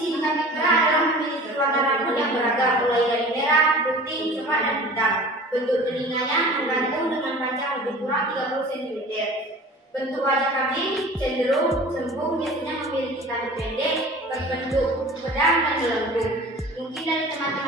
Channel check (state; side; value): normal; both; correlation 0.42